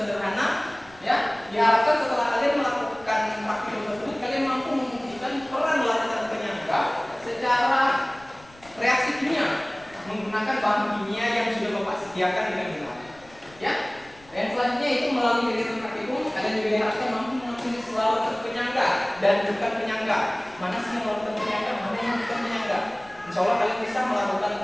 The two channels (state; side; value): noise; left; rumble, 25 dB below the sound